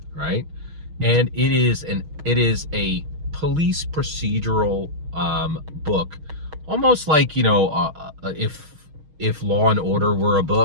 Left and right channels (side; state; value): left; late; 6.3 ms